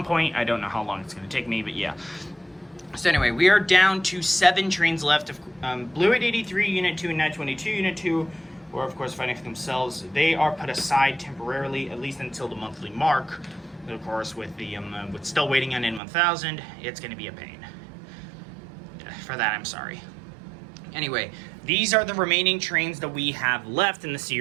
point. I don't know how long it's going to take me, but yeah. So anyway, we are down to 7 trains left. Blue 883, Unit 2, and 922, Unit 2, or of course fighting for themselves. They are put aside temporarily, at least until the monthly mark. But of course, with still waiting on N1000, it's going to be a pain. For that, I'm sorry. Anyway, these are the remaining trains that we have left in the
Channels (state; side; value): drops out; left; at 16.0 s